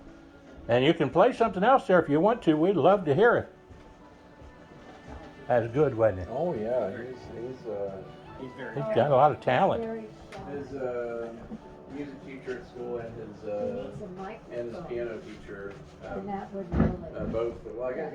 And you can play something else there if you want to. We'd love to hear it. That's good, wasn't it? Oh yeah, He's got a lot of talent. his music teacher at school and his piano teacher both. Well, I got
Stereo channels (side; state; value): both; identical; correlation 1.00